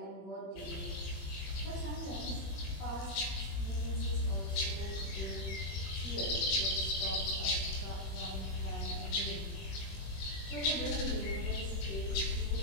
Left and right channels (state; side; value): late; right; 20 ms